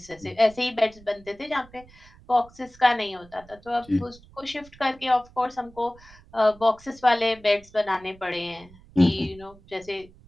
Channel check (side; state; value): right; noise; rumble, 24 dB below the sound